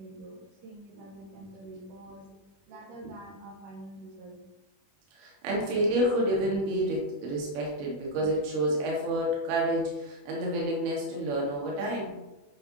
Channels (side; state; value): left; late; 21 ms